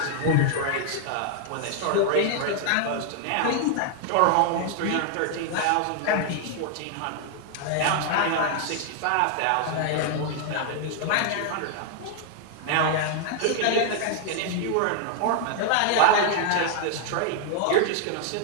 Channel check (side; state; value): both; different; correlation 0.00